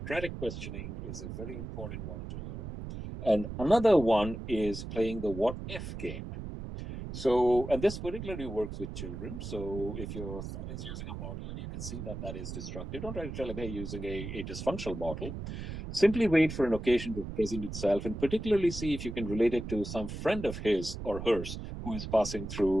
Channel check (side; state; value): right; noise; rumble, 7 dB below the sound